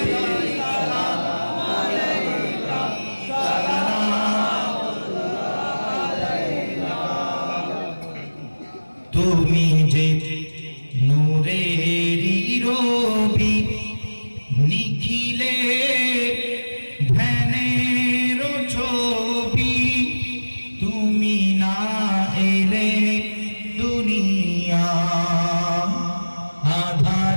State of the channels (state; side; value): inverted; both; correlation -1.00